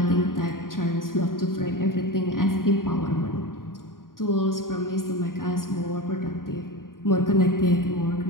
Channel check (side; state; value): right; late; 0.91 ms